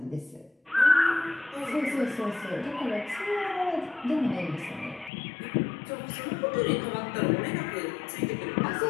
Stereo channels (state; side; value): drops out; right; at 5.1 s